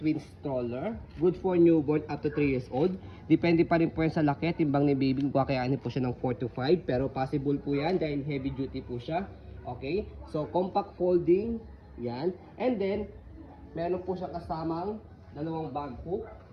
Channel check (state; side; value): identical; both; correlation 1.00